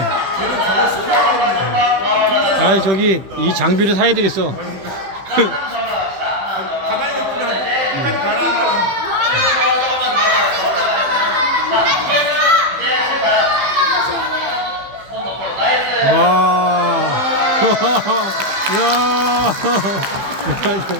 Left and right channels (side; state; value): left; late; 15 ms